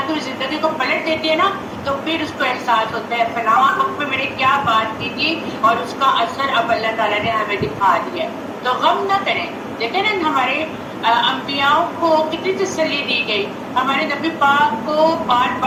کی زندگی کو پلٹ دیتے ہیں نا تو پھر اس کو احساس ہوتا ہے فلاں وقت میں میں نے کیا بات کی تھی اور اس کا اثر اب اللہ تعالیٰ نے ہمیں دکھا دیا. تو غم نہ کریں. دیکھیں نا ہمارے انبیاء کو کتنی تسلی دی گئی، ہمارے نبی پاک کو بار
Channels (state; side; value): identical; both; correlation 1.00